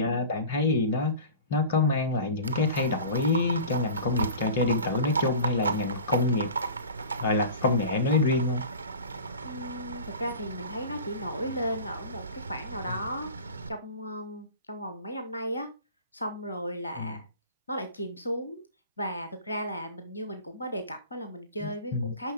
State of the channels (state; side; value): inverted; both; correlation -0.37